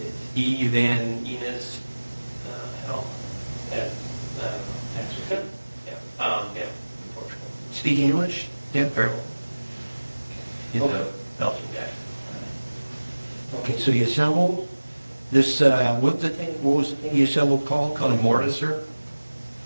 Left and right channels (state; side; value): inverted; both; correlation -1.00